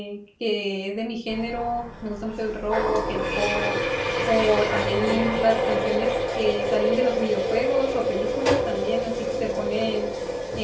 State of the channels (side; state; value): both; identical; correlation 1.00